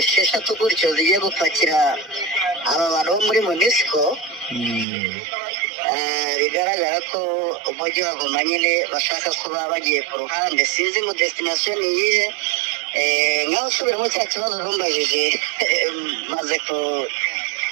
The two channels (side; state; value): left; drops out; at 4.9 s